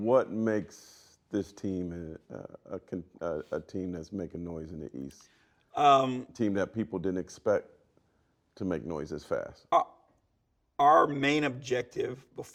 makes this team a team that's making noise in the East? Team that people didn't expect to make noise as fast? Our main objective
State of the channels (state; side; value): identical; both; correlation 1.00